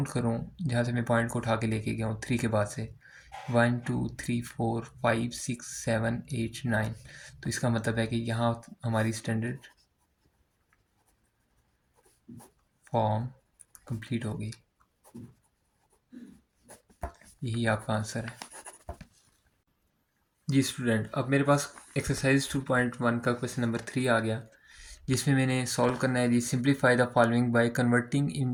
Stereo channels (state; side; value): identical; both; correlation 1.00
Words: करूँ, जहाँ से मैं पॉइंट को उठा के लेके गया हूँ 3 के बाद से, 1 2 3 4 5 6 7 8 9, तो इसका मतलब है कि यहाँ हमारी स्टैंडर्ड फॉर्म कंप्लीट हो गई, यही आपका आंसर है जी स्टूडेंट। अब मेरे पास एक्सरसाइज 2.1 का क्वेश्चन नंबर 3 आ गया, जिसमें मैंने सॉल्व करना है जी simplify the following by converting